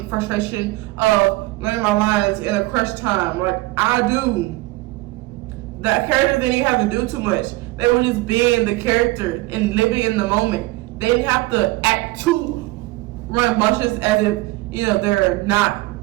frustration of learning my lines in a crush time. Like, I do. The characters didn't have to do too much. They were just being the character and living in the moment. They didn't have to act too rambunctious as if, you know, they're not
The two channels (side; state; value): left; quieter; 20.2 dB